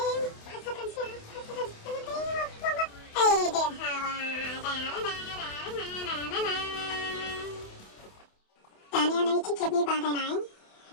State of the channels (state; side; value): late; right; 28 ms